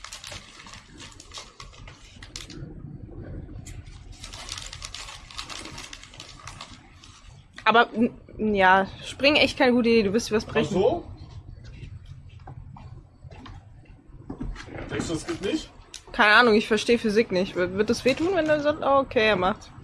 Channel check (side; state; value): both; identical; correlation 1.00